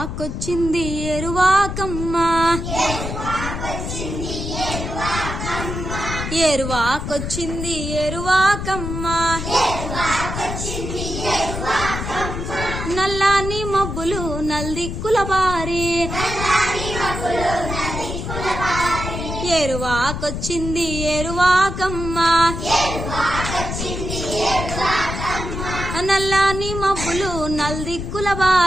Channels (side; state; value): left; noise; rumble, 5 dB below the sound